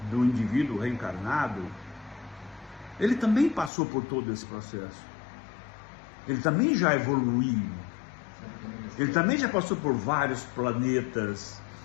do indivíduo reencarnado, ele também passou por todo esse processo. Ele também já evoluiu. Ele também já passou por vários planetas,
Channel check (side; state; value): right; drops out; at 3.7 s